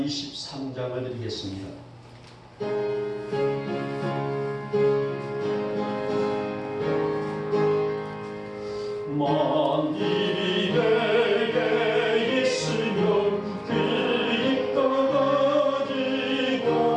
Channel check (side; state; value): both; identical; correlation 1.00